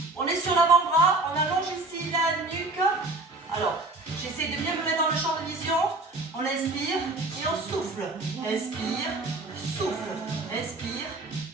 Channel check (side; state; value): left; quieter; 3.1 dB